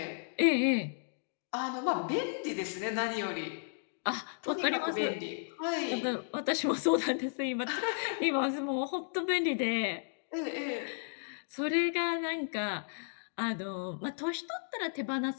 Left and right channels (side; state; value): right; silent; digital silence